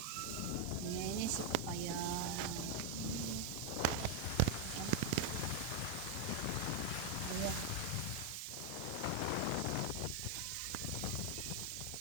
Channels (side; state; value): both; different; correlation 0.01